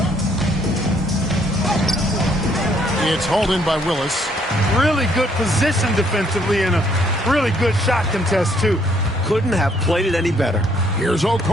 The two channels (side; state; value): both; normal; correlation 0.67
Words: It's hauled in by Willis. Really good position defensively and a really good shot contest, too. Couldn't have played it any better. Here's